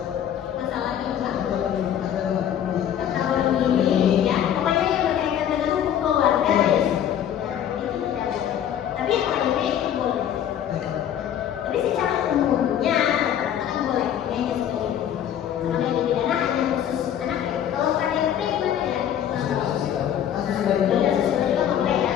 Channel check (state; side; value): quieter; right; 10.0 dB